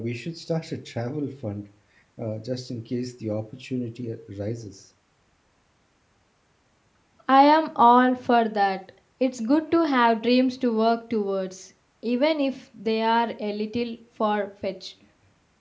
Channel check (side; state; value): both; identical; correlation 1.00